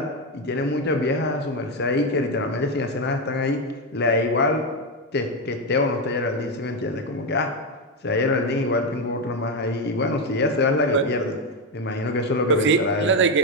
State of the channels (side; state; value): both; normal; correlation 0.08